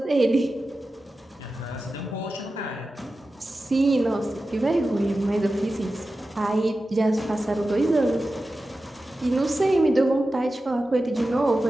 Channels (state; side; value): normal; both; correlation 0.93